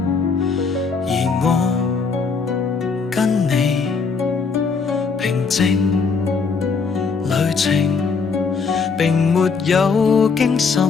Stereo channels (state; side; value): quieter; right; 4.9 dB